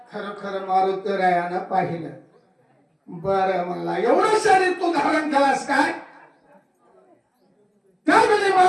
खरं खरं मारुतीरायानं पाहिलं. बरं म्हणला एवढं शरीर तू धारण केलास काय. त्यावेळी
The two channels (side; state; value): both; identical; correlation 1.00